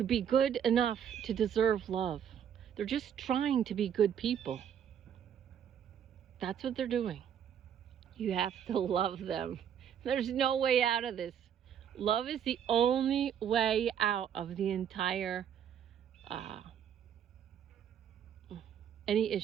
be good enough to deserve love. They're just trying to be good people. That's what they're doing. You have to love them. There's no way out of this. Love is the only way out of the entire any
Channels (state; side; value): quieter; left; 8.8 dB